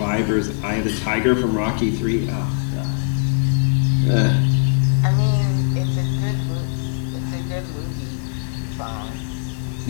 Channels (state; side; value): silent; right; 56 dB below the other